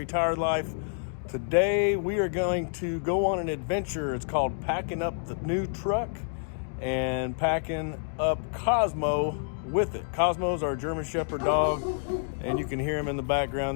Life. Today we are going to go on an adventure. It's called packing up the new truck and packing up Cosmo with it. Cosmo's our German Shepherd dog, and you can hear him in the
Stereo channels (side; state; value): right; silent; digital silence